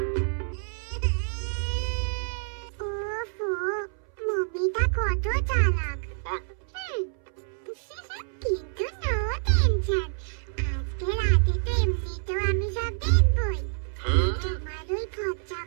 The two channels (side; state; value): left; silent; 60 dB below the other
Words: ওফো, মমিটা কত চালাক। কিন্তু নো টেনশন, আজকে রাতে তো এমনিতেও আমি সব দেখবই। তোমার ওই ফচ্চা